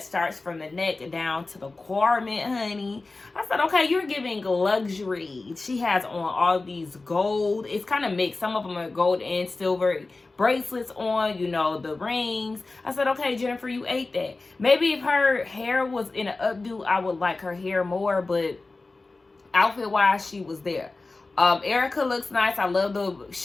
starts from the neck down to the garment, honey. I said, okay, you're giving luxury. She has on all these gold. It's kind of mixed. Some of them are gold and silver bracelets on, you know, the rings. I said, okay, Jennifer, you ate that. Maybe if her hair was in an updo, I would like her hair more, but outfit-wise, she was there. Erica looks nice. I love the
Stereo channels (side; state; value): right; quieter; 3.5 dB